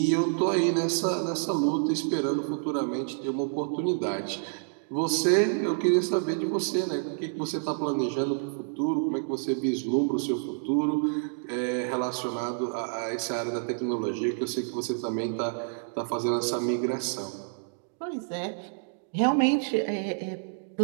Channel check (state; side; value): silent; left; digital silence